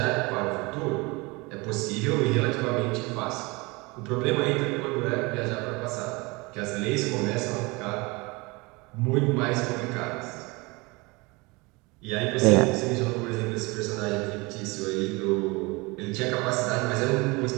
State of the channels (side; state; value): left; quieter; 25.4 dB